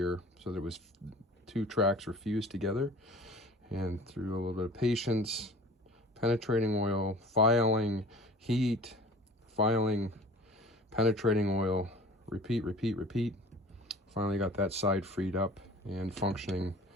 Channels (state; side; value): normal; both; correlation 0.44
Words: so that it was 2 tracks were fused together. And through a little bit of patience, penetrating oil, filing, heat, filing, penetrating oil, repeat, repeat, repeat. Finally got that side freed up and functioning